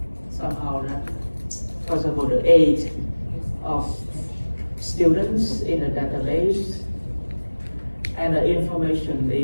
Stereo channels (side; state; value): both; inverted; correlation -1.00